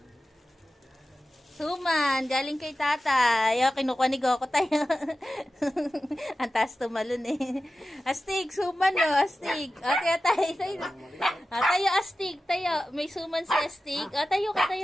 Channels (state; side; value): normal; both; correlation 0.94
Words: Suman, galing kay tatay. Kinukuha ni Goku tayo. Ang taas tumalon eh. Astig, suman no, astig. Kaya tayo. Tayo, astig, tayo. May suman si astig. Tayo ka,